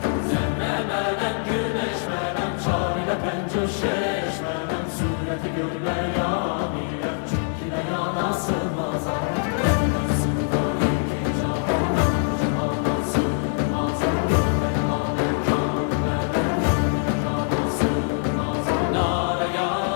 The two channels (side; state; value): right; silent; 63 dB below the other